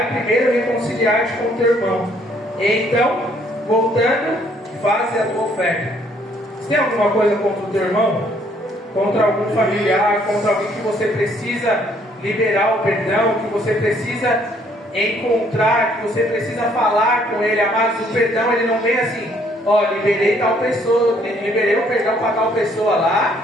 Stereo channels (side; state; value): both; normal; correlation 0.65